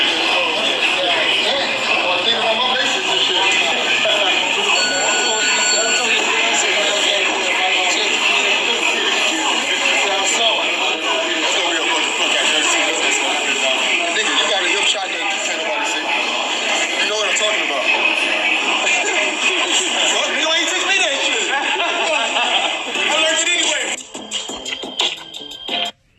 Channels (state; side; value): identical; both; correlation 1.00